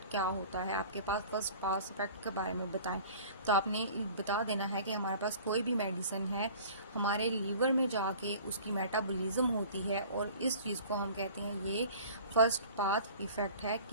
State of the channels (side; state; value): both; inverted; correlation -0.45